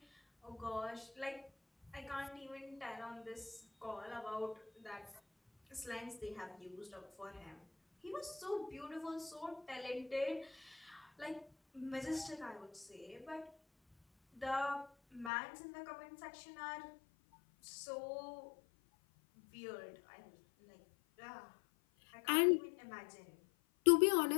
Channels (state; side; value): drops out; right; at 15.3 s